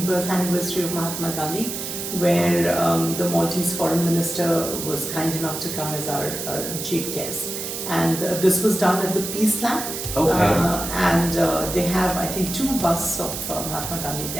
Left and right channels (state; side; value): noise; right; hiss, 6 dB below the sound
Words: birth anniversary of Mahatma Gandhi, where the Maltese foreign minister was kind enough to come as our chief guest, and this was done at the Peace Lab. And they have, I think, 2 busts of Mahatma Gandhi